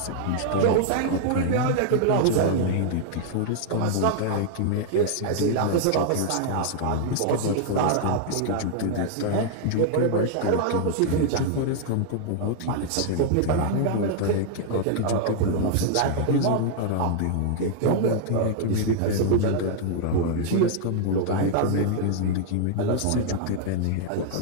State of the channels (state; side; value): different; both; correlation 0.00